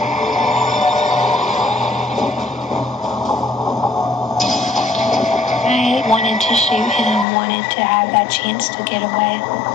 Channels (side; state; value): right; drops out; at 7.2 s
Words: I wanted to shoot him, wanted to have that chance to get away.